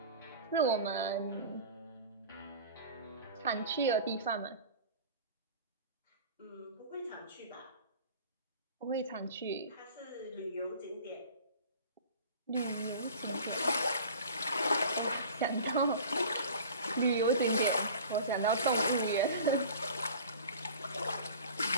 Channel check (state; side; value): inverted; both; correlation -0.42